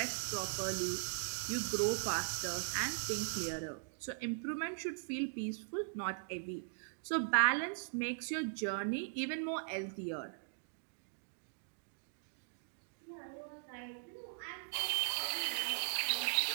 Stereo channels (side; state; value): left; silent; digital silence